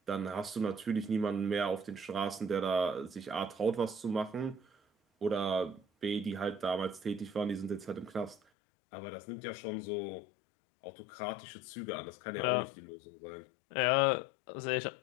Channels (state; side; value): drops out; right; at 8.4 s